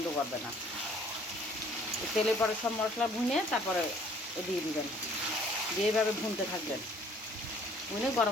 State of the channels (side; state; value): both; normal; correlation 0.57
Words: করবে না। তেলে পরে সব মশলা ভুনে তারপরে দিয়ে দিবেন। দিয়ে এইভাবে ভুনতে থাকবেন। ভুনে